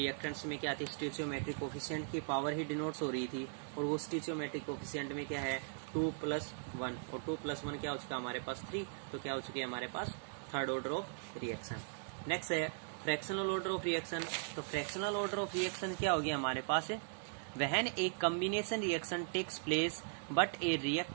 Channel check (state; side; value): silent; left; digital silence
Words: में क्या थी? स्टोइचियोमेट्रिक कोफिशिएंट की पावर ही डिनोट्स हो रही थी, और वो स्टोइचियोमेट्रिक कोफिशिएंट में क्या है? 2 + 1, और 2 + 1 क्या हो चुका हमारे पास? 3. तो क्या हो चुकी है हमारे पास? Third order of reaction. Next है फ्रैक्शनल ऑर्डर ऑफ रिएक्शन. तो फ्रैक्शनल ऑर्डर ऑफ रिएक्शन क्या होगी हमारे पास? When a combination reaction takes place but a